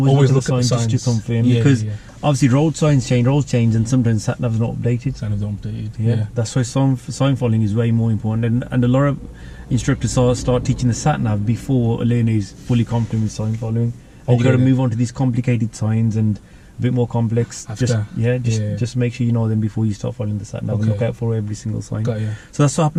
look at the sign just to confirm, because obviously roads change, and sometimes sat nav's not updated. Sat nav's not updated. Yeah. That's why sign following is way more important, and a lot of instructors start teaching the sat nav before a learner is fully competent with sign following. And you got to move on to these complicated signs and a bit more complex. After. Just make sure you know them before you start following the sat nav. Okay. Look out for every single sign. Got you. So that's what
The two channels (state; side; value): identical; both; correlation 1.00